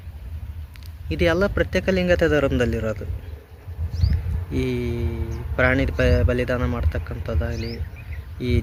ಇದೆಲ್ಲ ಪ್ರತ್ಯೇಕ ಲಿಂಗಾಯತ ಧರ್ಮದಲ್ಲಿರೋದು. ಈ ಪ್ರಾಣಿ ಬಲಿದಾನ ಮಾಡ್ತಕ್ಕಂಥದ್ದಾಗಲಿ, ಈ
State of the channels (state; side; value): identical; both; correlation 1.00